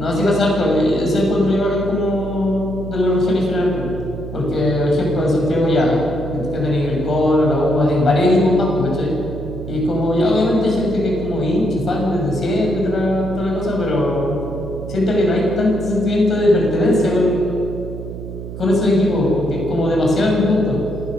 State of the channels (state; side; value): noise; right; hum, 10 dB below the sound